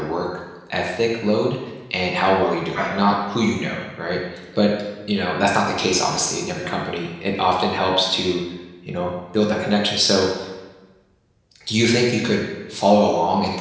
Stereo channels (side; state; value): both; identical; correlation 1.00